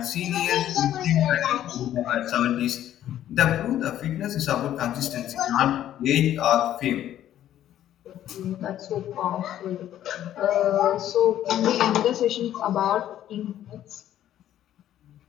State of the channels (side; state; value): right; quieter; 11.8 dB